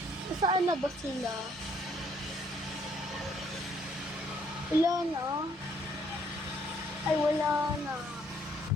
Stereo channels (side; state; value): both; normal; correlation 0.66